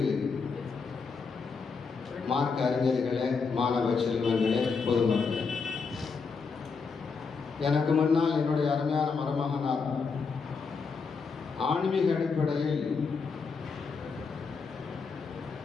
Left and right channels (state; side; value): quieter; right; 5.0 dB